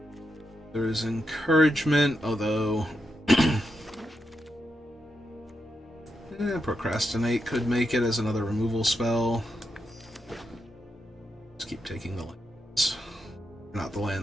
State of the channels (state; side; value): normal; both; correlation 0.85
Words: There is encouragement, although procrastinate could make it as another removal spell. Just keep taking the lands. Not the